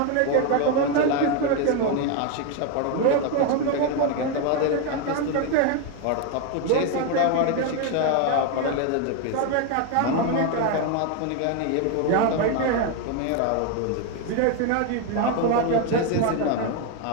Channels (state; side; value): different; both; correlation 0.01